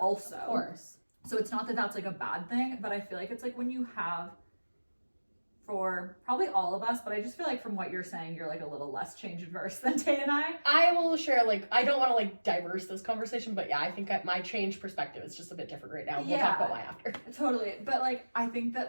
Of course. So it's not that that's like a bad thing, but I feel like it's like when you have, for probably all of us, but I just feel like from what you're saying, you're like a little less change adverse than Tay and I. I will share, like, I don't want to like diverse this conversation, but yeah, I think my change perspective is just a bit different right now. We'll talk about why after. Totally. But like, I think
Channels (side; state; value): both; inverted; correlation -1.00